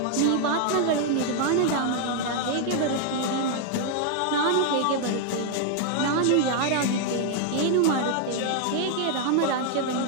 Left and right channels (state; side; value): different; both; correlation 0.00